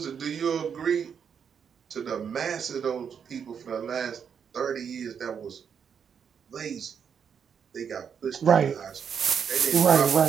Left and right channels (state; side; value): quieter; left; 7.3 dB